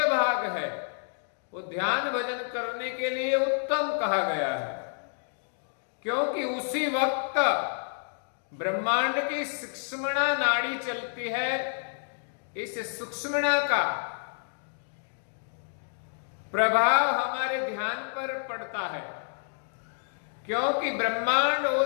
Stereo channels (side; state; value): right; silent; digital silence